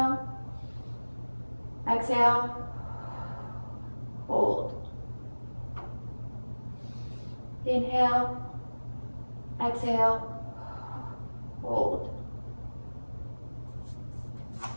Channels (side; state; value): both; inverted; correlation -1.00